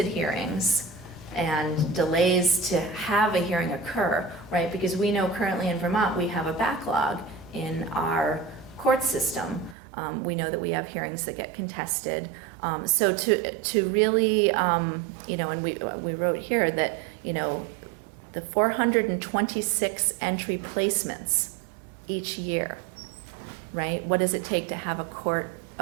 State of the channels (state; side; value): drops out; left; at 9.8 s